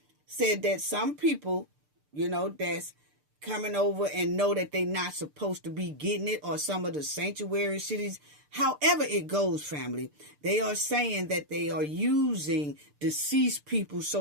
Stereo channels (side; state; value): left; late; 6.7 ms